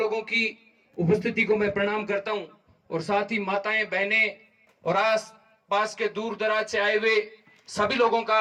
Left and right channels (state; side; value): identical; both; correlation 1.00